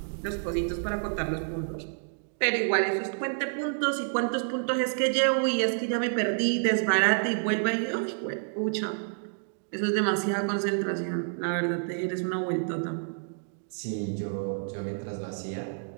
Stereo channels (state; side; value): silent; left; digital silence